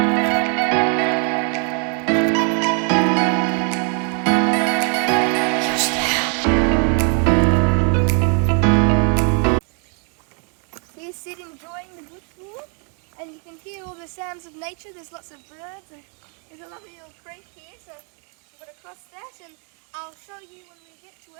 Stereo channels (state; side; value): quieter; left; 39.4 dB